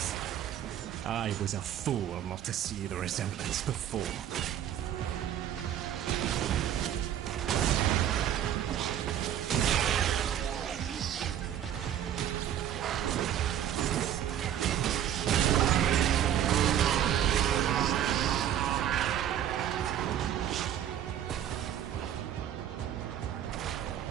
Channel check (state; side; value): quieter; left; 10.5 dB